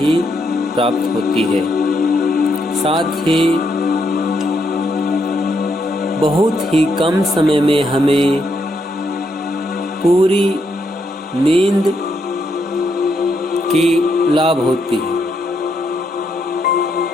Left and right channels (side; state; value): both; normal; correlation 0.78